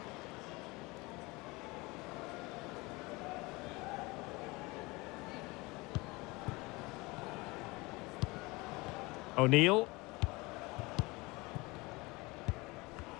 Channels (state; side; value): quieter; right; 23.8 dB